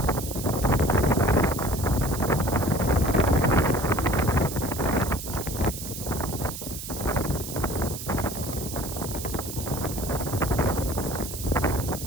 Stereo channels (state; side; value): noise; right; hiss, 9 dB below the sound